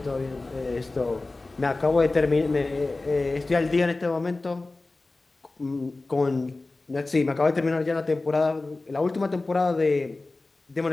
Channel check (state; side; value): quieter; right; 3.2 dB